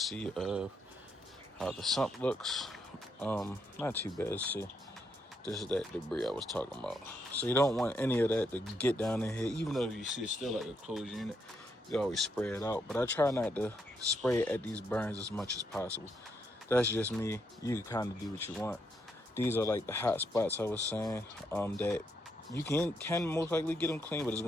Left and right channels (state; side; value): normal; both; correlation 0.78